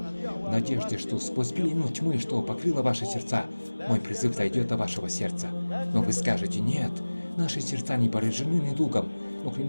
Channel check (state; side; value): inverted; both; correlation -1.00